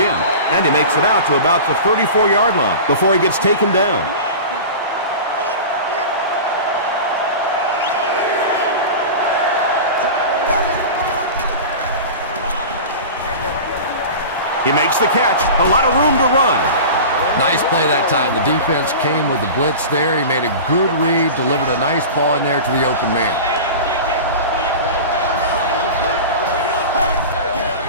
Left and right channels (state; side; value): inverted; both; correlation -0.32